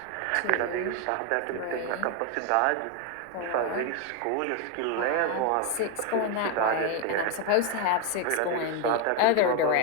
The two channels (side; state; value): both; different; correlation 0.01